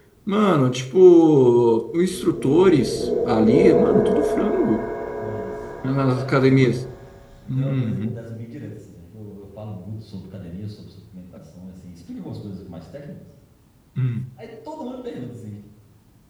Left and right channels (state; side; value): identical; both; correlation 1.00